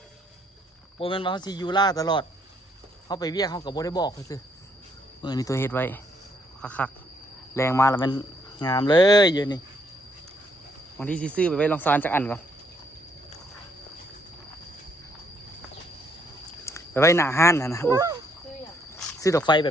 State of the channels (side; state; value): both; normal; correlation 0.71